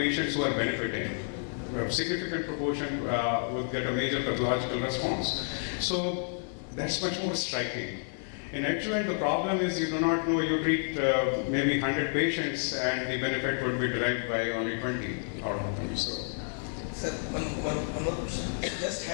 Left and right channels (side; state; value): right; silent; 58 dB below the other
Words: who are benefiting. A significant proportion would get a major pathological response. So that's much more striking. In adjuvant, the problem is you do not know, you treat maybe 100 patients and the benefit would be derived by only 20 out of them. So. Sir, one more question. I just